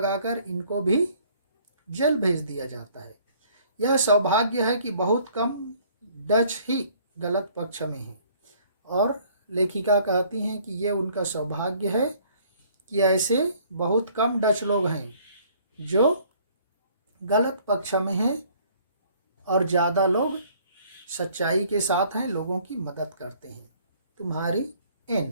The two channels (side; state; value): both; inverted; correlation -0.58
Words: इनको भी जेल भेज दिया जाता है। यह सौभाग्य है कि बहुत कम डच ही गलत पक्ष में हैं, और लेखिका कहती हैं कि ये उनका सौभाग्य है कि ऐसे बहुत कम डच लोग हैं जो गलत पक्ष में हैं और ज़्यादा लोग सच्चाई के साथ हैं, लोगों की मदद करते हैं। तुम्हारी